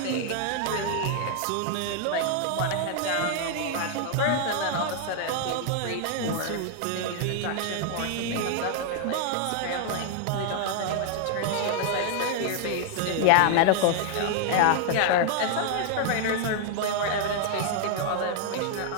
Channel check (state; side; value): different; both; correlation 0.00